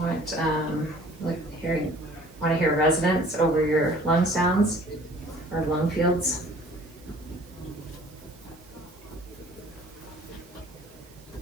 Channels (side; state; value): right; noise; hiss, 25 dB below the sound